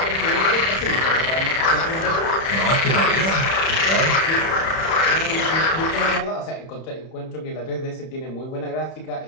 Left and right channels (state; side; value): late; right; 31 ms